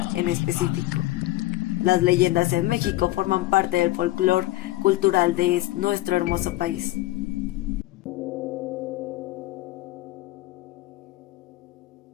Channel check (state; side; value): quieter; right; 17.7 dB